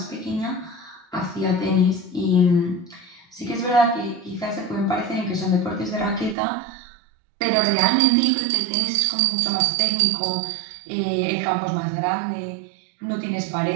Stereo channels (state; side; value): drops out; left; at 6.4 s